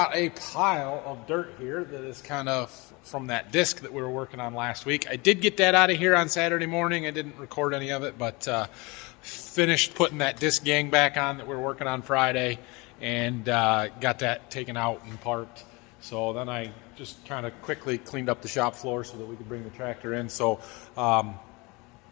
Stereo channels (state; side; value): quieter; right; 26.1 dB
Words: a pile of dirt here that is kind of from that disc that we were working on last week. I did get that out of here on Saturday morning. I didn't record any of it, but finished putting that disc gang back on that we were working on Friday and got that taken out and parked. So then I just kind of quickly cleaned up the shop floor so that we could bring the tractor in. So